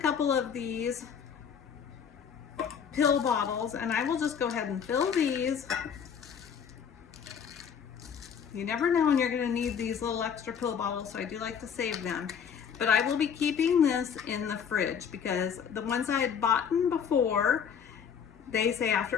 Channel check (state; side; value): quieter; right; 7.4 dB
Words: of these pill bottles, and I will just go ahead and fill these. You never know when you're going to need these little extra pill bottles, so I do like to save them. But I will be keeping this in the fridge because the ones I had bought before, they say